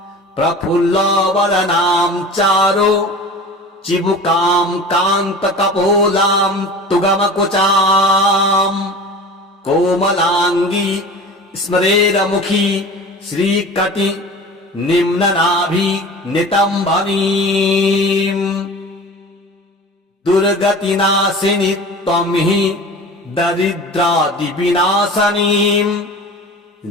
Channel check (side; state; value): both; normal; correlation 0.37